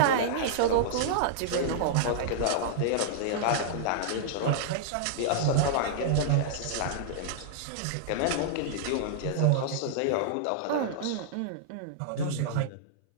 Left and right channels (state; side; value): different; both; correlation -0.02